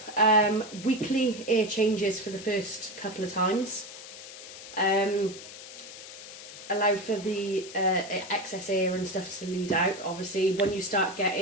weekly air changes for the first couple of times. Allow for the excess air and stuff to lead out. Obviously when you start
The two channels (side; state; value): left; noise; hiss, 14 dB below the sound